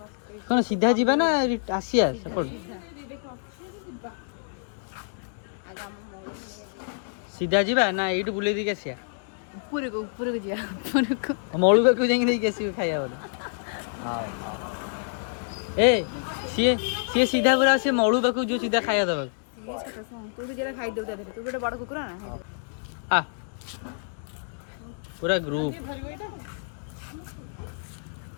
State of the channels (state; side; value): silent; right; digital silence